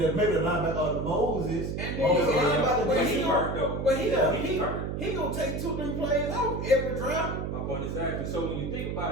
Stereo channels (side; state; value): right; noise; hum, 3 dB below the sound